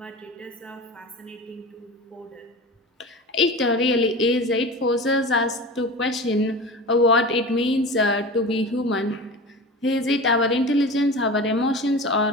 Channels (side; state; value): both; normal; correlation 0.32